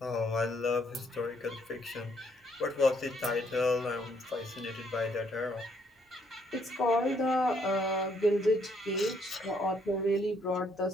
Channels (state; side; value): normal; both; correlation 0.69